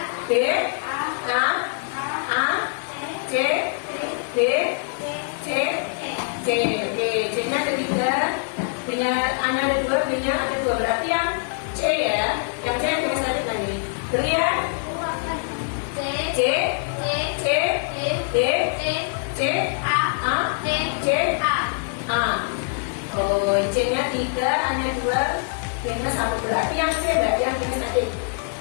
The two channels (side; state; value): right; silent; 63 dB below the other